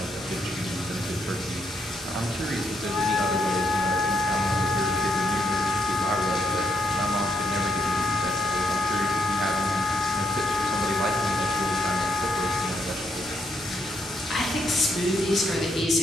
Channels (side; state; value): both; normal; correlation 0.76